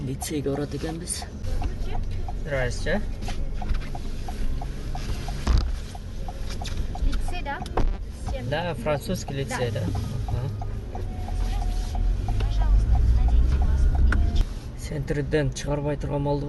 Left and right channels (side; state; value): both; identical; correlation 1.00